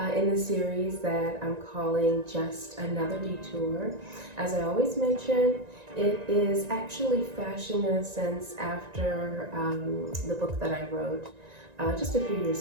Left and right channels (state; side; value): late; left; 1.9 ms